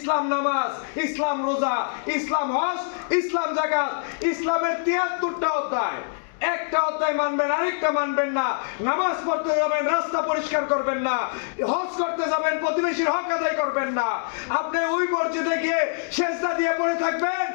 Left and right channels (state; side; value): silent; right; digital silence